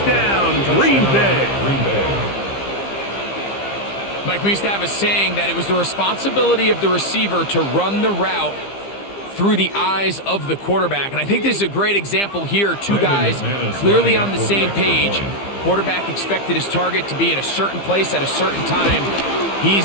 Green Bay. Mike, we used to have a saying that it was the responsibility of the receiver to run the route through the eyes of the quarterback. And I think this is a great example here. Two guys clearly on the same page. Quarterback expected his target to be in a certain place at a certain time.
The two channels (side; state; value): right; late; 15 ms